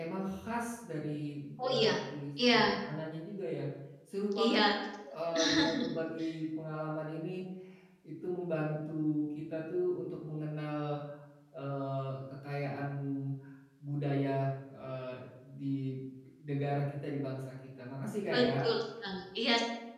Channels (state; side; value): identical; both; correlation 1.00